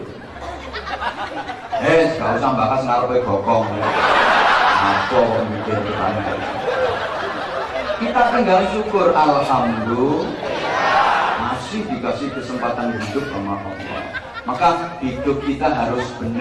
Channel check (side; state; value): both; identical; correlation 1.00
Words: Gak usah bakas ngarepe bokong. Apa mikir kita tinggal syukur, alhamdulillah masih dikasih kesempatan hidup sama Allah. Maka hidup kita harus